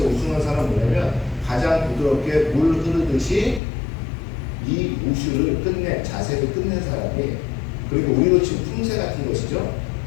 우승한 사람은 뭐냐면 가장 부드럽게 물 흐르듯이 이 우슈를 끝낸, 자세를 끝낸 사람이, 그리고 우리로 치면 품새 같은 것이죠.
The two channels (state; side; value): drops out; right; at 3.6 s